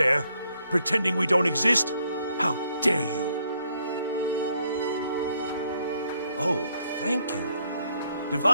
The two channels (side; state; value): both; inverted; correlation -0.71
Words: pretending we don't exist? How dare you! Oh, thank you.